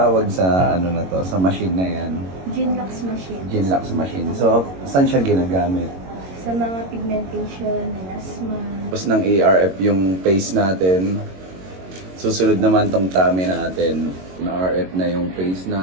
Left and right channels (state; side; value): late; left; 22 ms